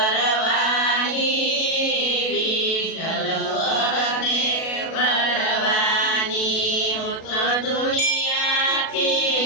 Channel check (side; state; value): right; late; 37 ms